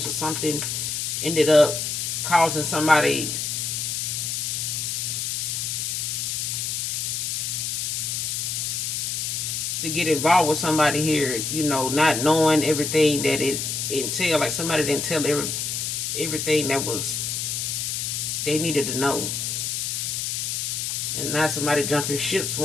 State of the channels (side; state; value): left; noise; hiss, 1 dB below the sound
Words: or something ended up causing somebody to get involved with somebody here, not knowing everything that it entailed. Like somebody didn't tell everything that was they needed to know. And now somebody jumping ships